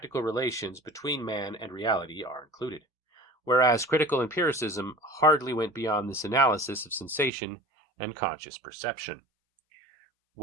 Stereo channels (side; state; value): left; drops out; at 7.3 s